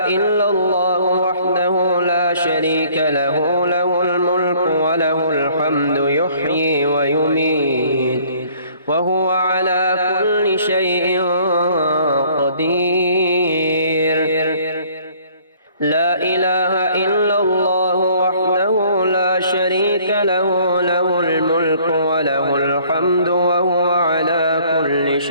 إلا الله وحده لا شريك له له الملك وله الحمد يحيي ويميت وهو على كل شيء قدير لا إله إلا الله وحده لا شريك له له الملك وله الحمد وهو على كل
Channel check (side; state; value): both; inverted; correlation -0.58